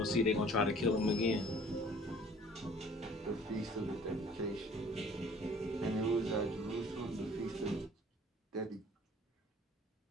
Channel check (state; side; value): normal; both; correlation 0.52